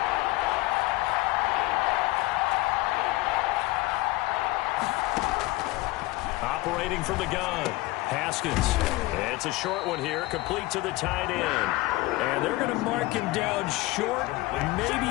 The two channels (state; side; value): quieter; right; 20.3 dB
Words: Operating from the gun. Haskins. It's a short one here, complete to the tight end. And they're going to mark him down short,